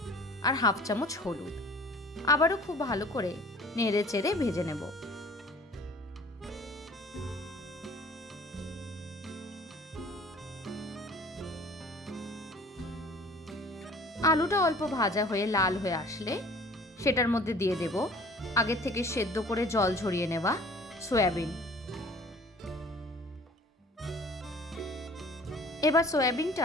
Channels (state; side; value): normal; both; correlation 0.49